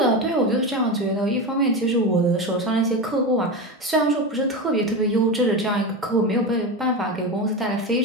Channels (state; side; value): normal; both; correlation 0.20